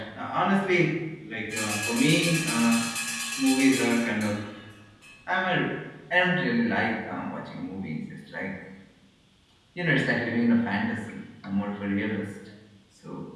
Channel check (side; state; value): both; identical; correlation 1.00